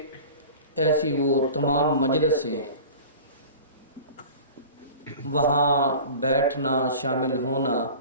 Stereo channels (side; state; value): both; inverted; correlation -0.39